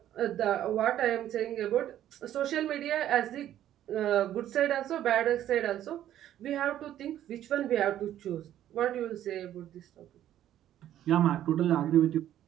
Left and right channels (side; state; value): left; quieter; 11.9 dB